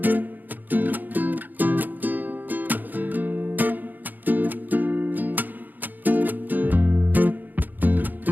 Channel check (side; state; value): left; late; 0.086 ms